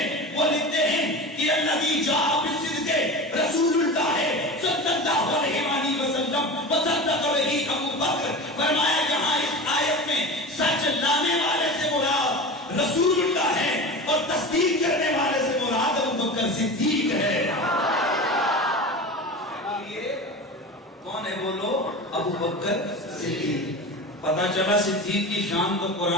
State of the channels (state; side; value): normal; both; correlation 0.30